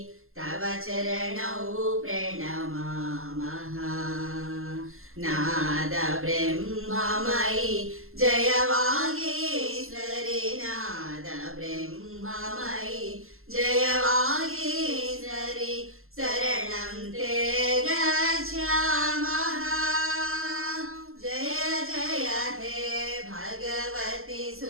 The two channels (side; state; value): left; late; 0.61 ms